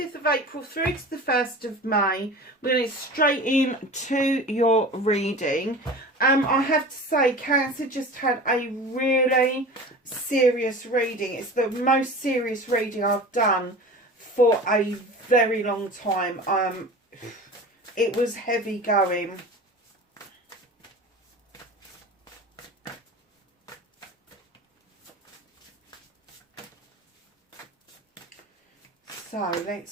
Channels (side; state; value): both; normal; correlation 0.36